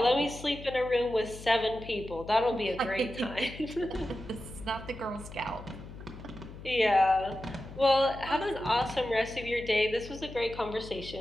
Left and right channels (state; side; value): noise; left; hum, 14 dB below the sound